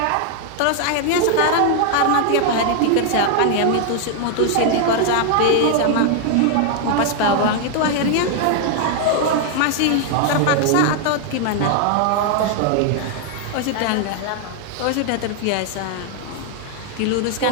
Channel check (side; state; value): both; different; correlation 0.00